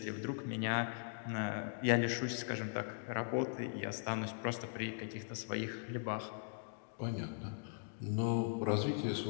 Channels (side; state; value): right; silent; digital silence